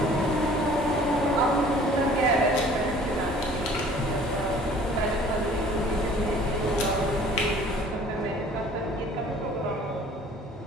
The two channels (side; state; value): both; normal; correlation 0.51